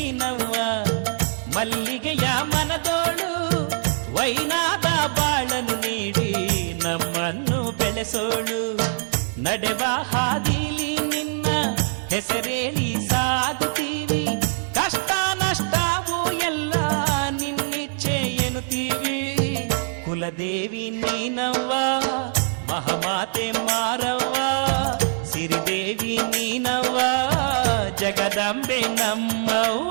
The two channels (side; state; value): left; silent; 62 dB below the other